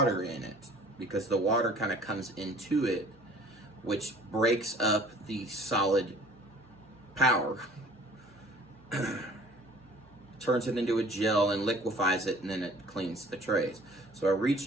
in it, because the water kind of comes into it, which breaks up the Solid Power, turns it into a gel and liquefies it, and then it cleans the trays. So I reach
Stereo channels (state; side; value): normal; both; correlation 0.50